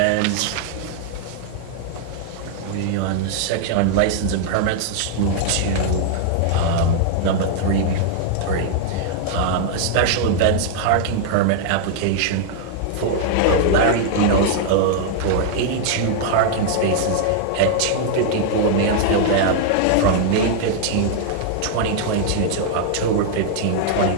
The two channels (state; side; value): different; both; correlation -0.01